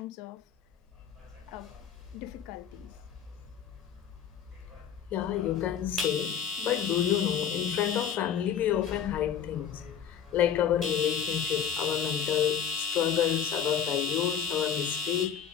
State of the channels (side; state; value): right; quieter; 8.3 dB